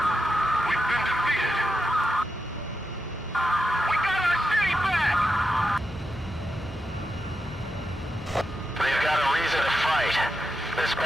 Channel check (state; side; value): normal; both; correlation 0.87